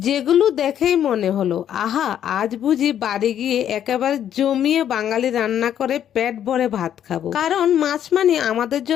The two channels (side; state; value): right; quieter; 10.1 dB